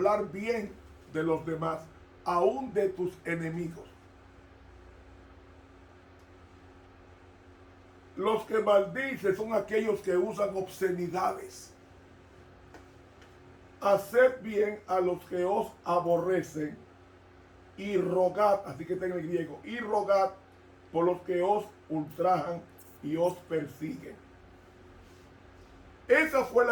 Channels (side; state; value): both; identical; correlation 1.00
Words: bien de los demás, aún de tus enemigos. Los que maldicen son aquellos que usan obscenidades. Haced bien a los que os aborrecen y rogad, así que está en el griego, y rogad por los que os ultrajan y os persiguen. Esa fue